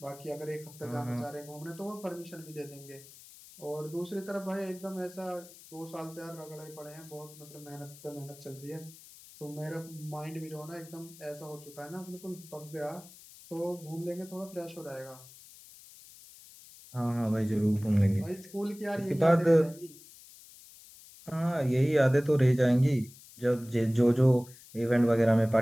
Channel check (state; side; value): noise; left; hiss, 20 dB below the sound